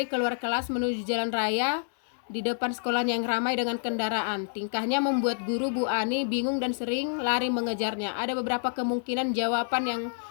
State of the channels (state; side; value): silent; right; 59 dB below the other